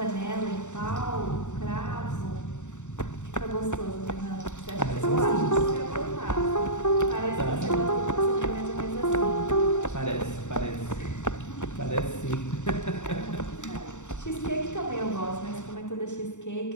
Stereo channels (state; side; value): late; right; 0.84 ms